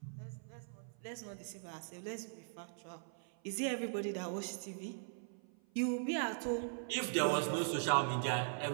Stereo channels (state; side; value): silent; left; 51 dB below the other